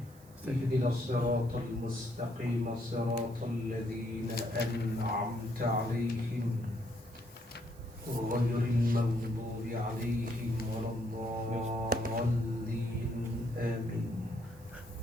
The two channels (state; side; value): noise; right; hiss, 25 dB below the sound